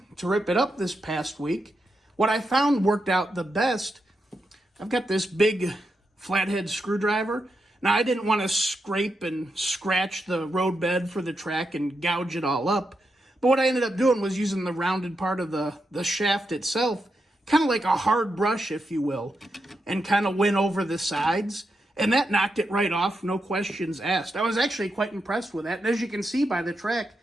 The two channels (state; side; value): normal; both; correlation 0.85